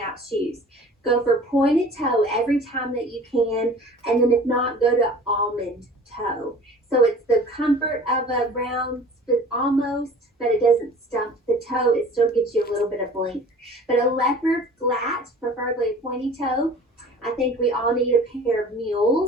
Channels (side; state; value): both; normal; correlation 0.45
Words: out shoes. Go for pointed toe every time that you can. And then if not, go to almond toe. So it's the comfort of a round almost, but it doesn't stump the toe. It still gives you a little bit of length. But a leopard flat, preferably a pointy toe. I think we all need a pair of